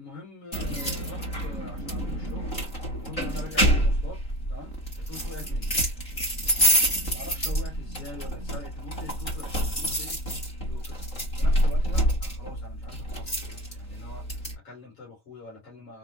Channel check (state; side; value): late; right; 3.7 ms